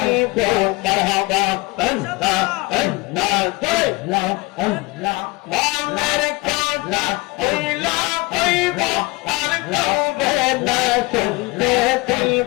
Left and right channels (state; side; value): quieter; right; 24.2 dB